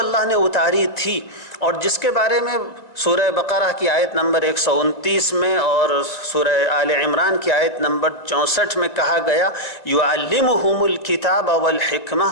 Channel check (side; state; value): right; late; 2.0 ms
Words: نے اتاری تھی اور جس کے بارے میں سورہ بقرہ کی آیت نمبر 129 میں اور سورہ آل عمران کی آیت نمبر 64 میں کہا گیا یعلمہم الکتاب والحکمہ،